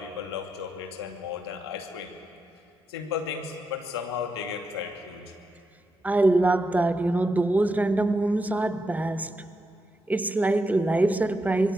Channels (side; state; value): both; normal; correlation 0.84